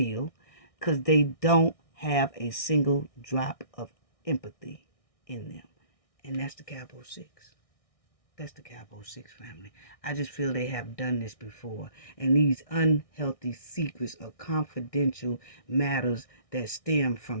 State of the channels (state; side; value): late; right; 1.6 ms